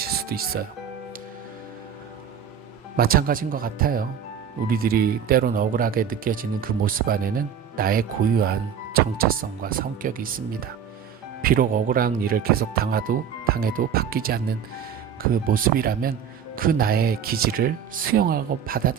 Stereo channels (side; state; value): left; quieter; 8.1 dB